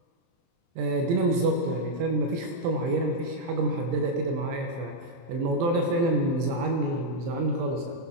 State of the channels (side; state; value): left; late; 23 ms